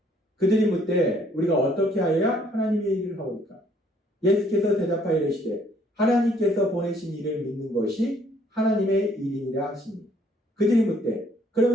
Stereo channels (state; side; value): normal; both; correlation 0.63